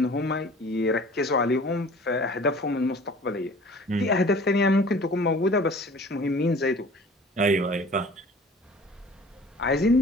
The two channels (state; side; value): normal; both; correlation 0.46